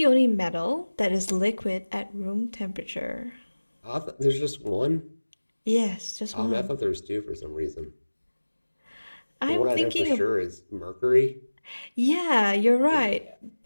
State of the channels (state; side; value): inverted; both; correlation -1.00